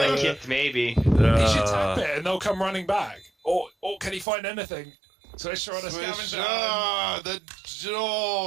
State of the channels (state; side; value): drops out; left; at 4.2 s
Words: kit, maybe. he should tap it and they'll come running back. Or can he find anything? Swisher on a scavenger. The